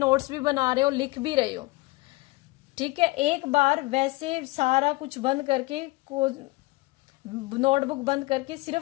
भी बना रहे हो, लिख भी रहे हो। ठीक है, एक बार वैसे सारा कुछ बंद करके, नोटबुक बंद करके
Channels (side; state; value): right; quieter; 22.3 dB